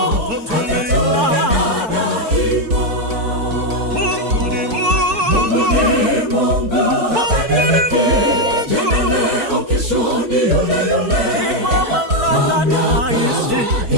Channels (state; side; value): late; left; 4.5 ms